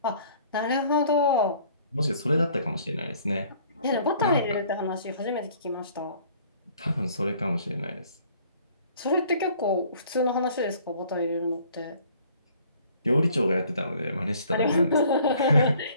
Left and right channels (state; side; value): inverted; both; correlation -0.56